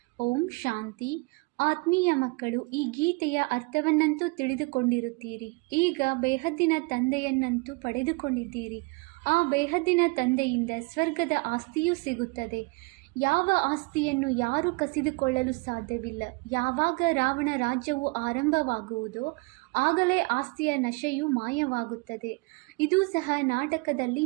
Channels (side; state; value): left; quieter; 28.1 dB